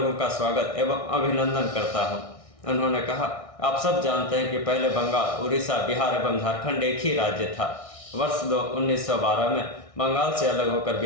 का स्वागत एवं अभिनंदन करता हूं। उन्होंने कहा, आप सब जानते हैं कि पहले बंगाल, उड़ीसा, बिहार एवं झारखंड एक ही राज्य था। वर्ष 1912 में बंगाल से अलग होकर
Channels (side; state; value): right; late; 1.6 ms